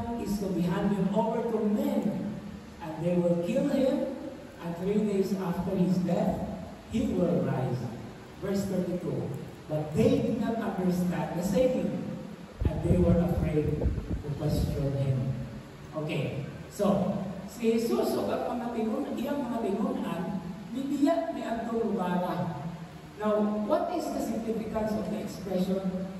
is to be handed over to men, and they will kill him, and 3 days after his death, he will rise. Verse 32, but they did not understand the saying, and they were afraid to question him. Okay, so, si Jesus o iyang mga tinunan, nibiyak ni Antong Lugara. Now, what is the significance of the expression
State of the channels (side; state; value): both; identical; correlation 1.00